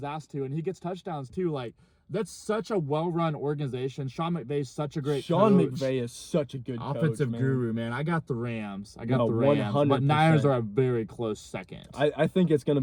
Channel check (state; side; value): identical; both; correlation 1.00